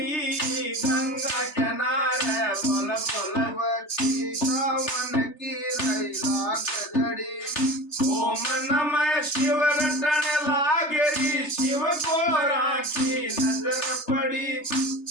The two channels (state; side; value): late; right; 3.3 ms